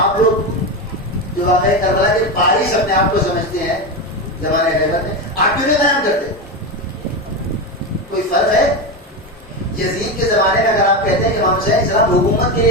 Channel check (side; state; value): both; normal; correlation 0.16